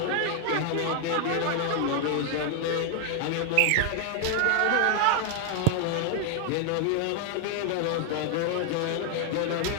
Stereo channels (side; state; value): both; different; correlation 0.00